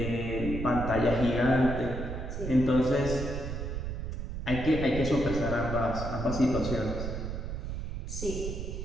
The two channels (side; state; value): right; noise; rumble, 5 dB below the sound